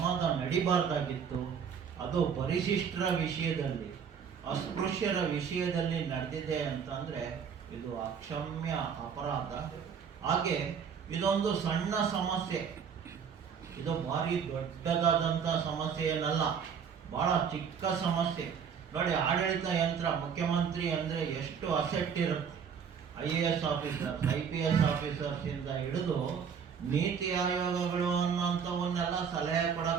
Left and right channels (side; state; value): left; quieter; 7.0 dB